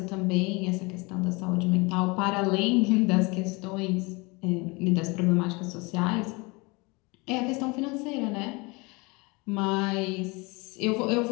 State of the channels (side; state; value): right; quieter; 26.7 dB